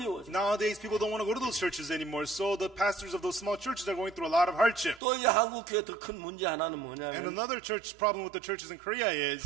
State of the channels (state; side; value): drops out; left; at 5.0 s